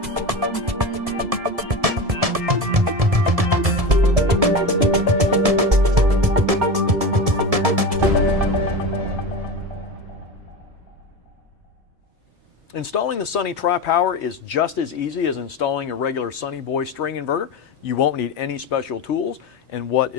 Installing the Sunny Tripower is just as easy as installing a regular Sunny Boy string inverter. You won't need any special tools, and what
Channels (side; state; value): left; late; 1.7 ms